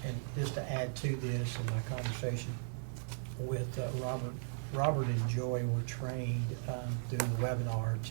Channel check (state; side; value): silent; left; digital silence